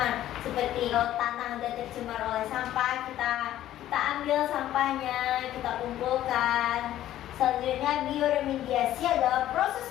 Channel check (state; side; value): quieter; right; 12.9 dB